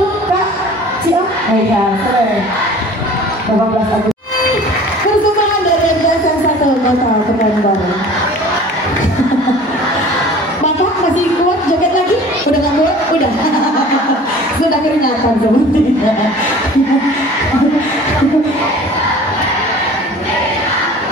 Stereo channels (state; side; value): normal; both; correlation 0.45